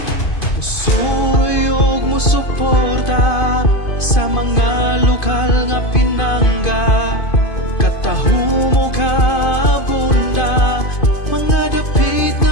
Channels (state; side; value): late; right; 2.5 ms